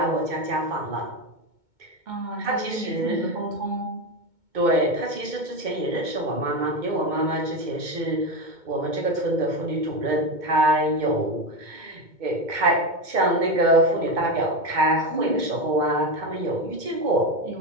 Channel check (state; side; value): late; left; 2.2 ms